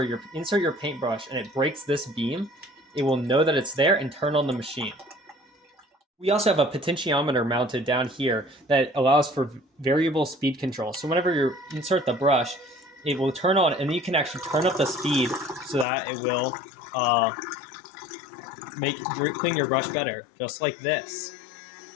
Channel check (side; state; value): right; drops out; at 15.9 s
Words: you insert your paintbrush and it breaks this beam, it will know that it's there and turn on the machine. We also have a potentiometer mounted down here that allows for variable speed control. So whenever you insert the brush, it will turn on, and you can actually turn up the speed so that it will clean your brush better, just like this.